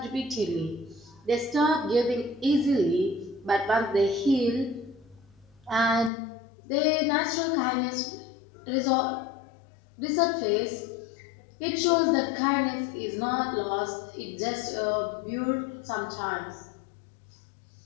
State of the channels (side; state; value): right; drops out; at 6.1 s